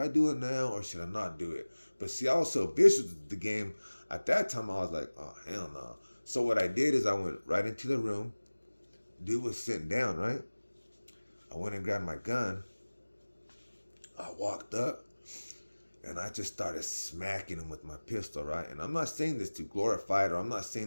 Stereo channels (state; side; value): inverted; both; correlation -1.00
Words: do it now or should I not do it? But see, I was so vicious with the game. At that time, I was like, oh hell no. So what I did is I went right into the room. Dude was sitting down, right? I went and grabbed my gun. I walked up and I just started smacking him with my pistol, right? And I'm not saying this to glorify it, or I'm not